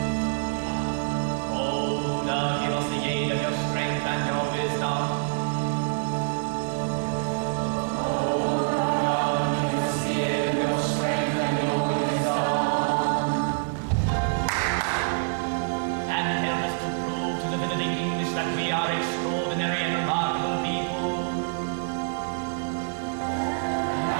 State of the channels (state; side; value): silent; left; digital silence